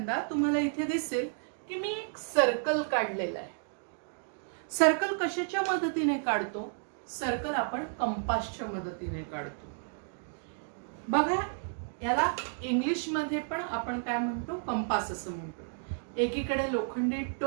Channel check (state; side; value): silent; left; digital silence